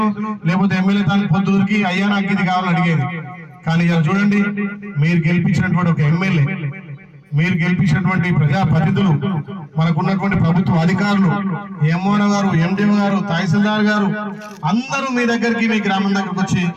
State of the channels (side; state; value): both; identical; correlation 1.00